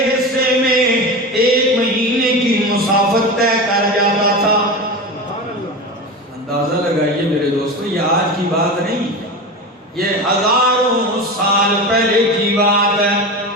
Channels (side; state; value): both; normal; correlation 0.25